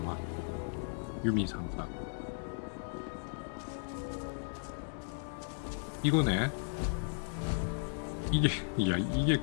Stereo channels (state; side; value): silent; right; 54 dB below the other